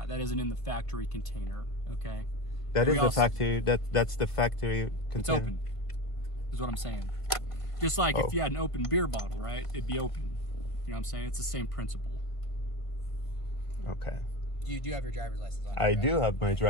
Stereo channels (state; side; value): late; right; 1.7 ms